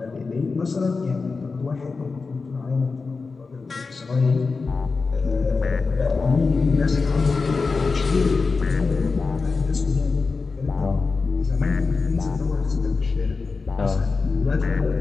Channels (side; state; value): right; quieter; 4.3 dB